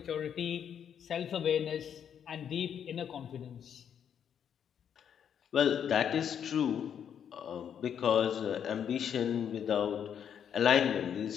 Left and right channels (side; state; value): right; quieter; 8.5 dB